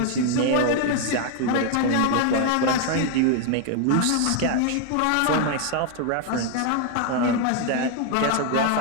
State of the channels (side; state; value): both; different; correlation 0.00